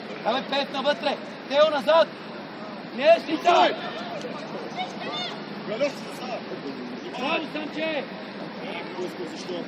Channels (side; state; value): both; identical; correlation 1.00